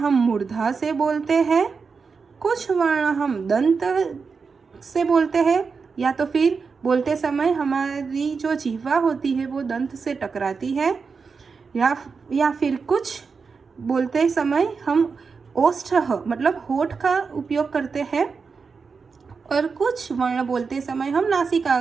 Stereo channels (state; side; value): quieter; left; 5.1 dB